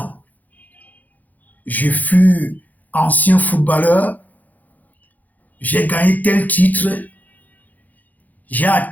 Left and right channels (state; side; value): late; right; 0.081 ms